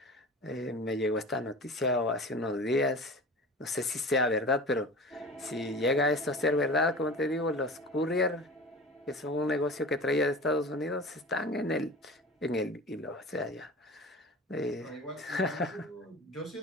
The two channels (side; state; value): both; normal; correlation 0.36